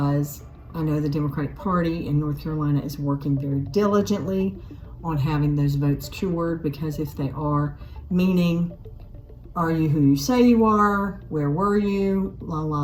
I know the Democratic Party in North Carolina is working very diligently on having those votes cured, because if they are, meaning, are you who you say you are? Where were you?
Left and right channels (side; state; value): both; identical; correlation 1.00